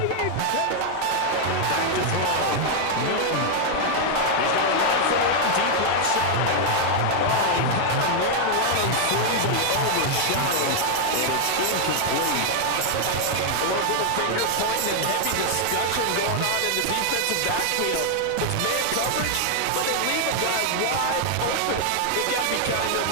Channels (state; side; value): different; both; correlation 0.00